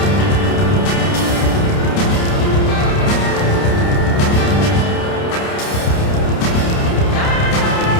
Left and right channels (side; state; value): right; late; 29 ms